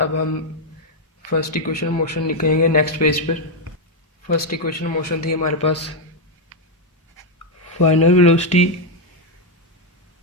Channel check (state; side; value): normal; both; correlation 0.02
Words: हम फर्स्ट इक्वेशन ऑफ मोशन निकालेंगे नेक्स्ट पेज पर। फर्स्ट इक्वेशन ऑफ मोशन थी हमारे पास final velocity